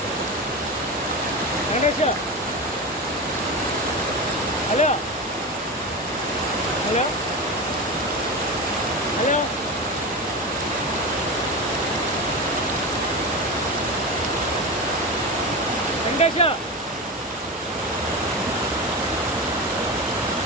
Venkatesh hello hello hello Venkatesh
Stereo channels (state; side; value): normal; both; correlation 0.22